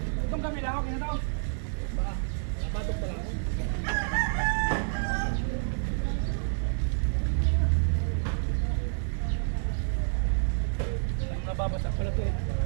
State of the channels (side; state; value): left; silent; digital silence